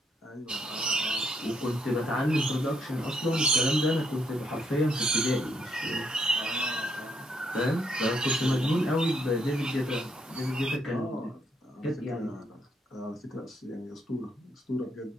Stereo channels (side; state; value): both; normal; correlation 0.74